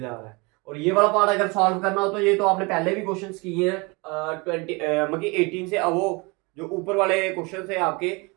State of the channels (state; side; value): quieter; left; 27.5 dB